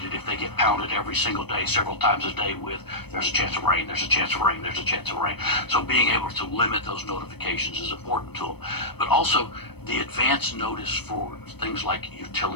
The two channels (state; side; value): late; right; 0.97 ms